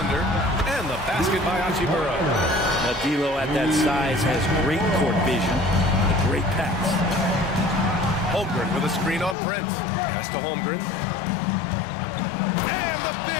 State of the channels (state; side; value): drops out; right; at 9.3 s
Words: And the basket by Hachimura. Now D'Lo at that size has great court vision. A great pass. Holmgren with a screen on Prince. Pass to Holmgren. And the